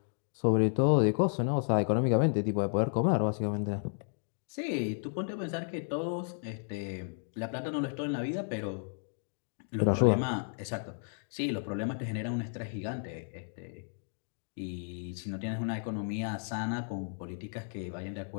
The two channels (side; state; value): right; silent; digital silence